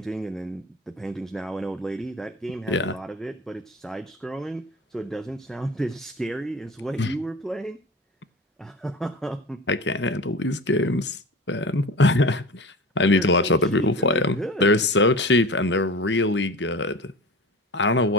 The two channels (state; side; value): normal; both; correlation 0.33